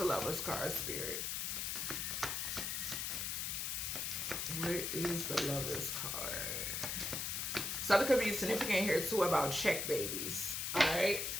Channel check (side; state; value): left; noise; hiss, 1 dB below the sound